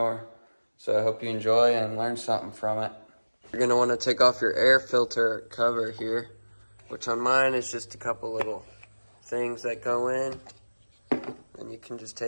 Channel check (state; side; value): inverted; both; correlation -1.00